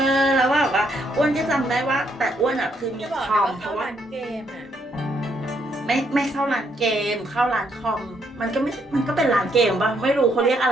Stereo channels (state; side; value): normal; both; correlation 0.73